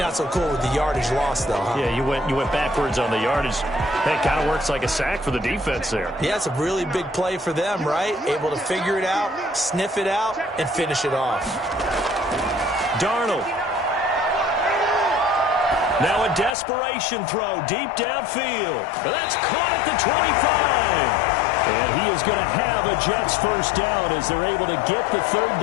so cool with the yardage loss, though, huh? Yeah, you went backwards on the yardage. That kind of works like a sack for the defense there. Yeah, it's a really big play for them, right? Able to figure it out, sniff it out, and finish it off. Darnold. Now a desperation throw deep downfield. That's caught at the 25. And he is going to have a Jets first down as they're able to get the 3rd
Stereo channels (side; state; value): right; drops out; at 16.6 s